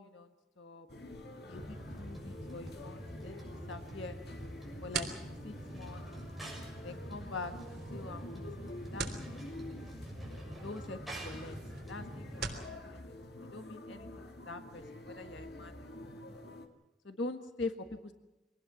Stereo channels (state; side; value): normal; both; correlation 0.51